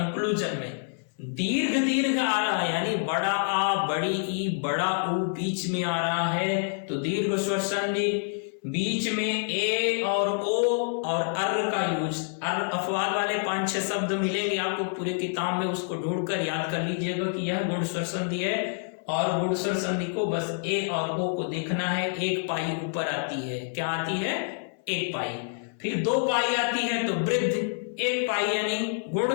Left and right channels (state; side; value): silent; right; 60 dB below the other